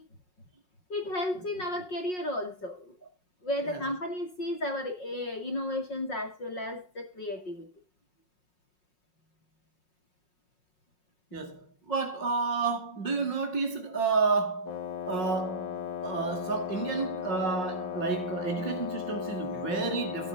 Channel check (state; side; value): late; right; 5.5 ms